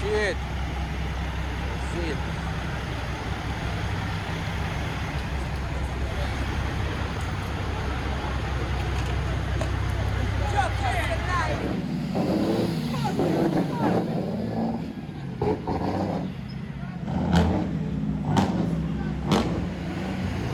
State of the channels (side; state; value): both; identical; correlation 1.00